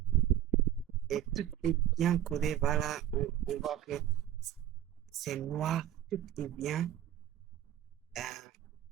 Et tout est bien codé. Voilà, on voit que c'est noir, tout est bien euh,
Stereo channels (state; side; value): quieter; left; 11.8 dB